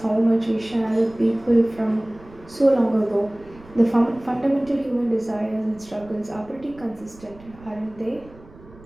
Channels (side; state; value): right; noise; rumble, 22 dB below the sound